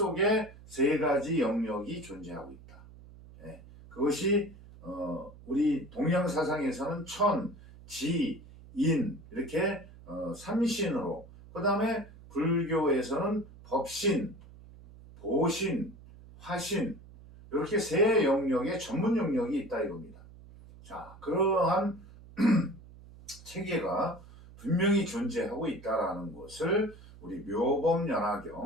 세 가지 영역이 존재하고 있다. 예, 그것이 우리 동양 사상에서는 천, 지, 인 이렇게 삼신으로, 그 다음에 불교에서는 법신, 보신, 화신 이렇게 세 영역의 전문 영역이 있다 이겁니다. 자, 그러한 체계가 분명히 존재하고 있다라는 것을 우리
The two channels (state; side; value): noise; right; hum, 20 dB below the sound